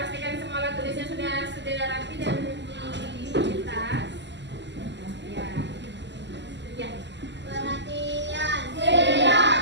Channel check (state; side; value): late; left; 0.51 ms